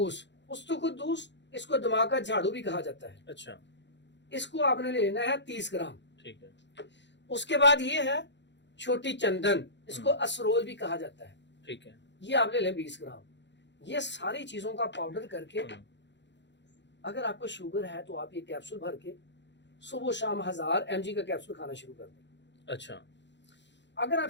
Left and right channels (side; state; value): right; late; 0.52 ms